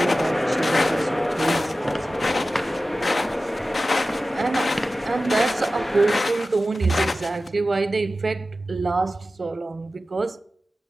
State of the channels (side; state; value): both; normal; correlation 0.95